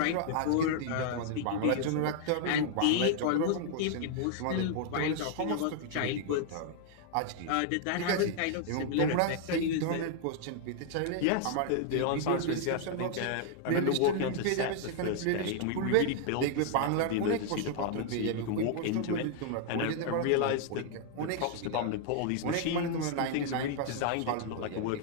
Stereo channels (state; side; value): different; both; correlation 0.00